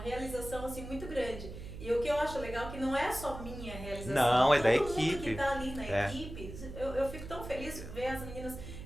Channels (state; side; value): noise; right; hum, 11 dB below the sound